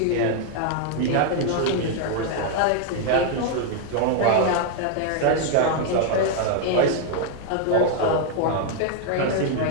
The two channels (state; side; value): different; both; correlation 0.00